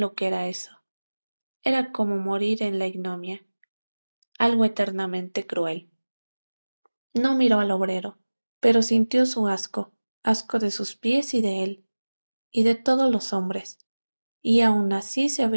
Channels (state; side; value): inverted; both; correlation -1.00